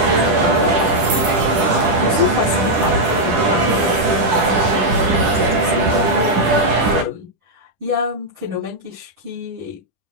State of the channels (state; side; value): late; left; 10 ms